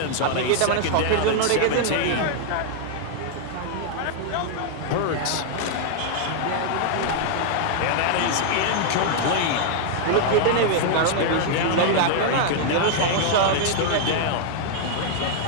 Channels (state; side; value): different; both; correlation 0.00